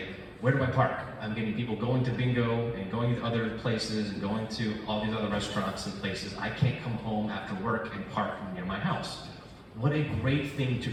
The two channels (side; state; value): both; identical; correlation 1.00